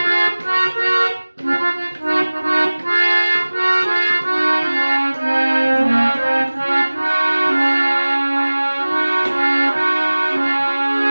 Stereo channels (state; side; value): inverted; both; correlation -1.00